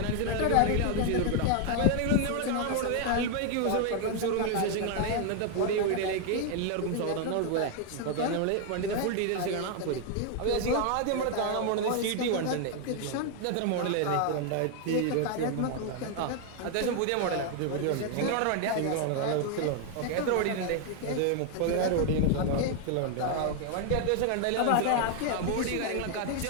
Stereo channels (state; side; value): different; both; correlation 0.01